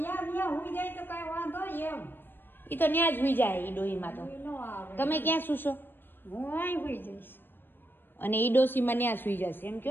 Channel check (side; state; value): right; late; 0.097 ms